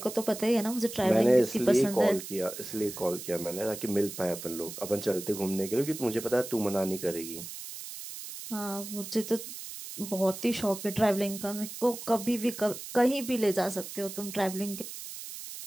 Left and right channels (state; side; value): noise; right; hiss, 10 dB below the sound